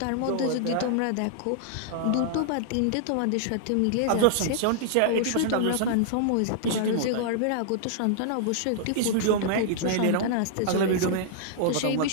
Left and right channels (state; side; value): different; both; correlation -0.01